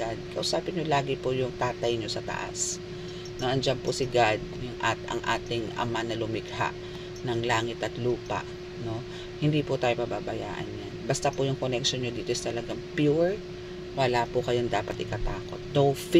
Kausapin nyo lagi po yung tatay nyo sa taas. Na andyan po si God, ang ating Ama na lumikha ng langit at lupa. No? Hindi po tayo pababayaan yan. Basta po yung connection nyo dito is talagang pure. Wala po kayong dapat ikatakot. No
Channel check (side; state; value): both; identical; correlation 1.00